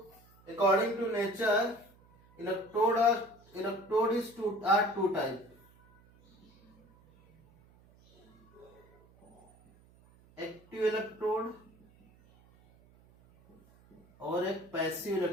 according to nature electrode is two type, active electrode और एक पैसिव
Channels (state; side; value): noise; right; hum, 28 dB below the sound